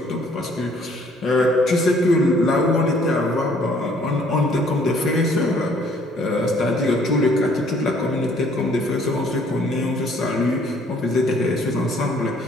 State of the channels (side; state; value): both; normal; correlation 0.61